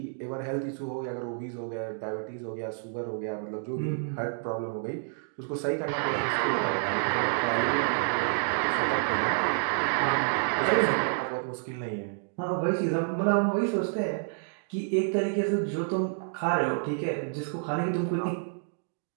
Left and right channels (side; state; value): left; silent; digital silence